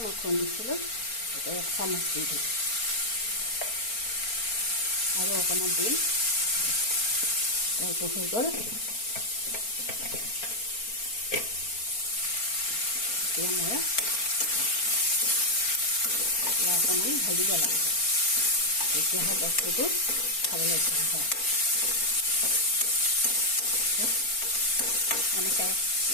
মই খুন্দিছিলোঁ, এতিয়া 1 চামুচ দি দিম, আৰু অকণমান দিম। এইটো হৈ গ'ল। এতিয়া মই অকণমান ভাজিব লাগিব, তেতিয়াহে বস্তুটো খাবলৈ ভাল হয়। এনেকৈ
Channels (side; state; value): right; late; 4.4 ms